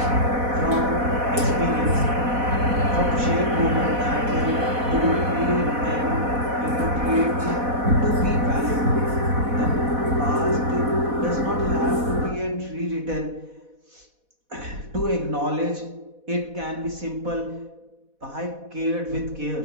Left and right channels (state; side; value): late; left; 4.1 ms